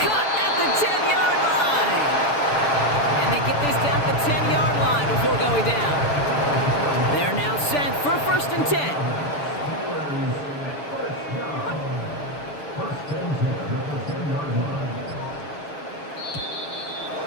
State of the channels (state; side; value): late; right; 6.9 ms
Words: at the 10-yard line. And they get this down to the 10-yard line before going down. They're now set for 1st and 10. First and 10 at the 10-yard line.